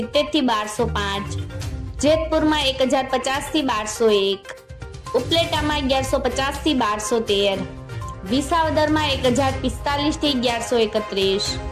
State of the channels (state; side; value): identical; both; correlation 1.00